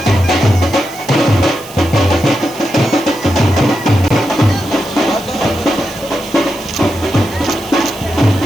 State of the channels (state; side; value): noise; right; hiss, 18 dB below the sound